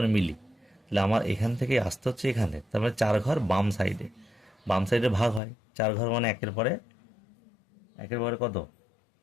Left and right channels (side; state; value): right; drops out; at 5.4 s